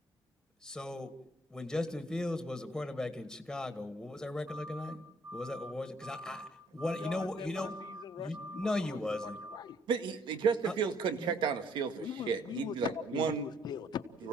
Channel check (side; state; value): both; normal; correlation 0.64